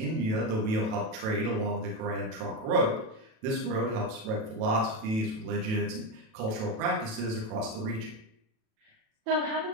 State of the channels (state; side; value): late; left; 37 ms